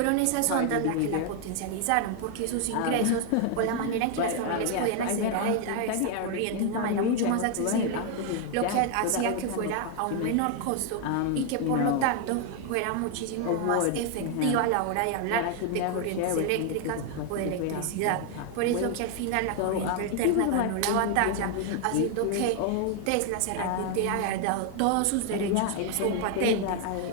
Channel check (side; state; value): both; different; correlation 0.00